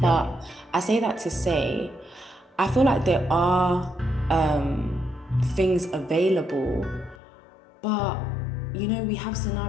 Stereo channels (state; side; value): drops out; right; at 7.2 s